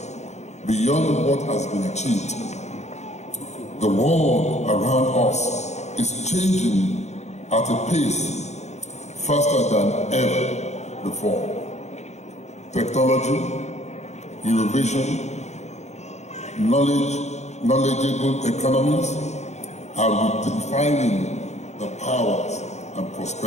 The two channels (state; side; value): late; right; 0.33 ms